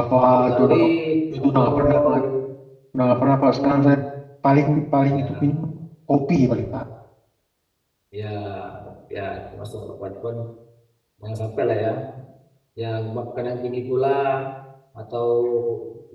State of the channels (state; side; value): identical; both; correlation 1.00